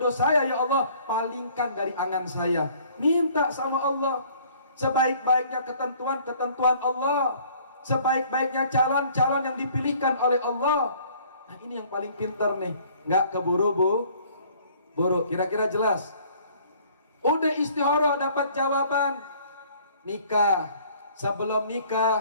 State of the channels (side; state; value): both; inverted; correlation -0.56